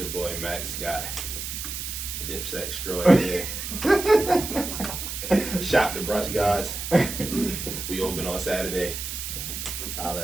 boy Mack Scott. Dipset extraordinaire. Shop the brunch gods. We open on Saturday.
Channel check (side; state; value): right; noise; hiss, 6 dB below the sound